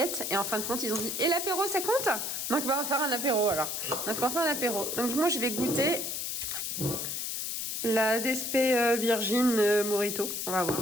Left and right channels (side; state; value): left; noise; hiss, 3 dB below the sound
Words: et en fin de compte ils ont dit « Et l'apéro ça compte ?» Donc bah, on va faire un apéro alors. Donc on va faire un apéro. Donc moi je vais goûter la DSP Virgin Morito. On va voir.